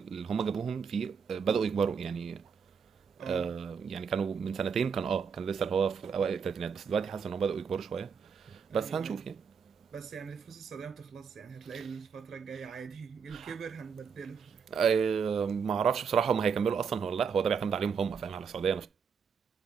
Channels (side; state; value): left; quieter; 6.3 dB